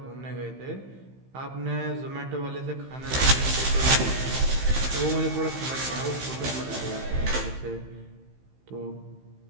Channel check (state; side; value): late; left; 15 ms